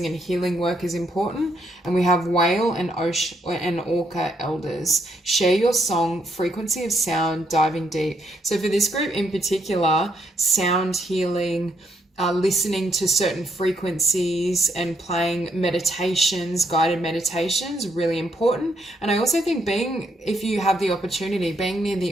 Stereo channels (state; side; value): normal; both; correlation 0.74